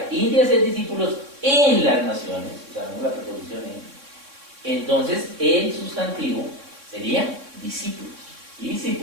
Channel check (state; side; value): late; left; 3.6 ms